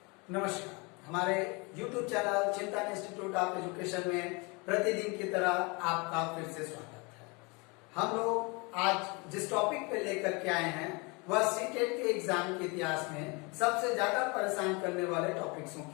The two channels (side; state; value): right; quieter; 28.8 dB